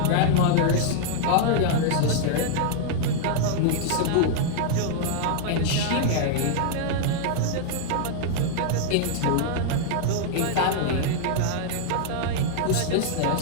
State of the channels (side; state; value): both; different; correlation -0.01